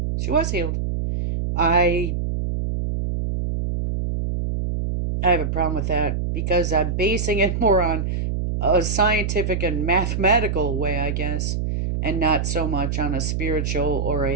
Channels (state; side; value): noise; right; hum, 1 dB below the sound